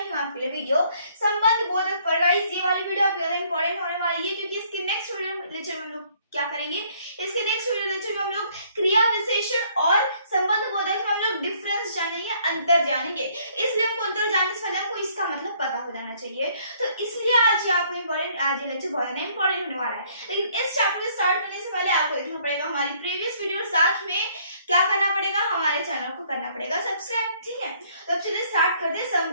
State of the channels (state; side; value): inverted; both; correlation -0.63